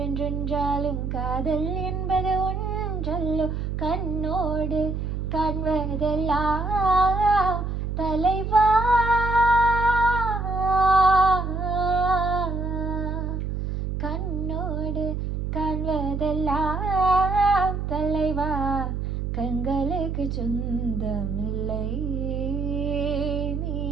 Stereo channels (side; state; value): right; noise; hum, 3 dB below the sound